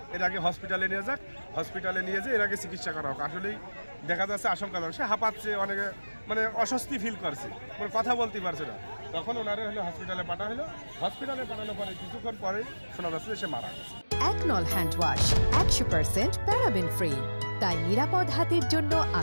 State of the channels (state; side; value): inverted; both; correlation -1.00